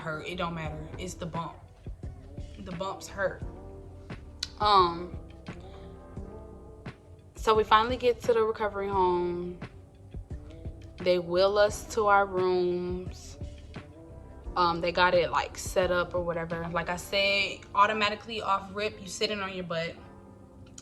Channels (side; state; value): both; identical; correlation 1.00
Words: hurt. It don't matter. It's the bump. The bumps hurt. So we finally get to the recovery home. They wheel us to our rooms. They got it like set up or whatever. Like I said, automatically off rip, you sitting on your butt.